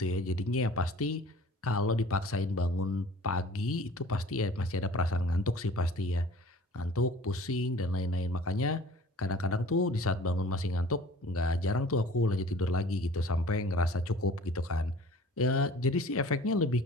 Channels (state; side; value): normal; both; correlation 0.47